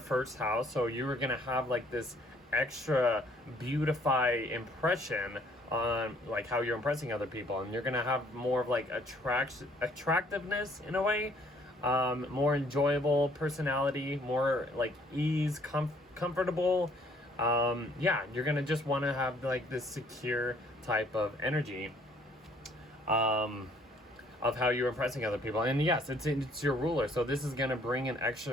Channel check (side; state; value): both; normal; correlation 0.61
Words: 1st house. So you are going to have like this extra beautify impression on like how you're impressing other people, and you're gonna have more of like attractiveness in a way, more enjoyable personality, more like ease, comfortable. Yeah, you're gonna just want to have like this secure type of energy of how you're impressing other people. And yes, it's your ruler, so this is gonna bring an